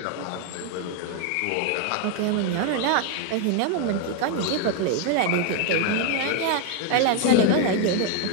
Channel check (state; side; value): different; both; correlation 0.01